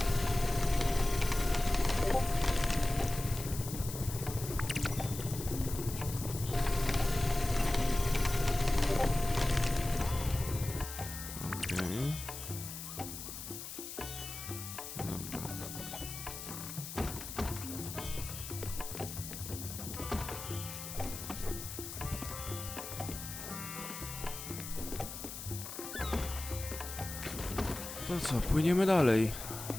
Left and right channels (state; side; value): noise; left; hiss, 9 dB below the sound